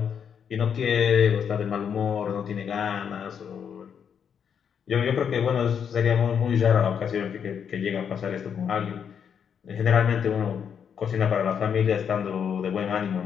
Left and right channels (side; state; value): right; quieter; 7.6 dB